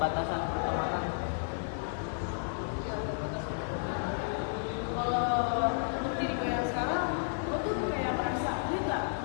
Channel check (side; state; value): right; silent; digital silence